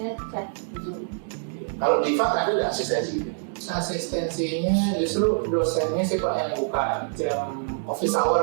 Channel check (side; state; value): left; silent; digital silence